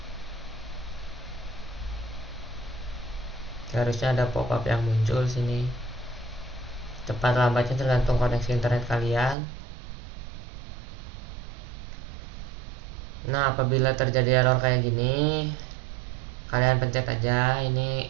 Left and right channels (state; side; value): drops out; left; at 9.3 s